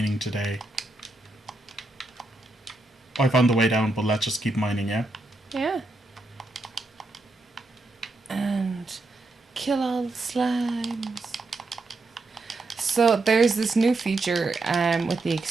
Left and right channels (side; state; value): left; quieter; 3.0 dB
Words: today. I found the way down, but let's just keep mining, yeah? Yeah. And kill all the slimes. So there's this new feature with the